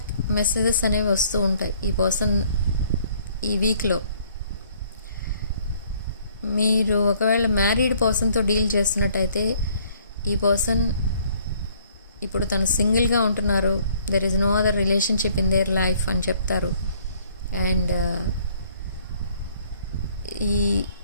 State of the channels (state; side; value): inverted; both; correlation -0.61